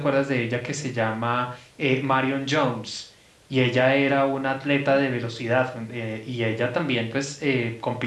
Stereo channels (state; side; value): identical; both; correlation 1.00